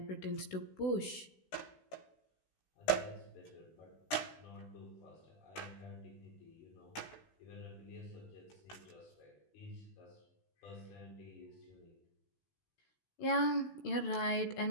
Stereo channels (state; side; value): late; right; 16 ms